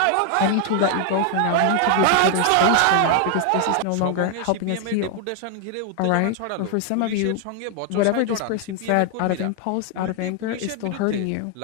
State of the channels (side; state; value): both; different; correlation 0.00